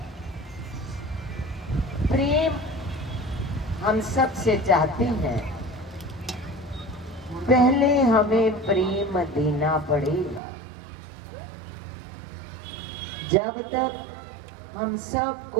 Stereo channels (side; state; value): left; drops out; at 10.4 s